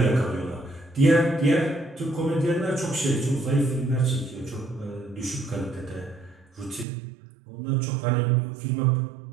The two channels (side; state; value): left; drops out; at 6.9 s